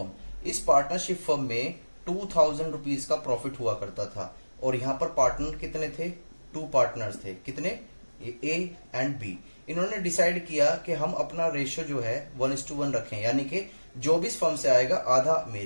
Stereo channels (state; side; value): inverted; both; correlation -1.00